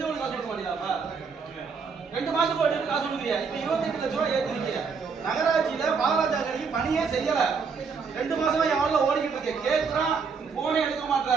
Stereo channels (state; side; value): quieter; left; 5.4 dB